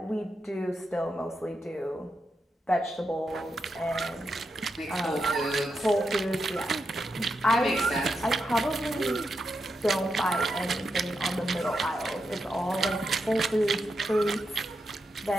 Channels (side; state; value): both; normal; correlation 0.85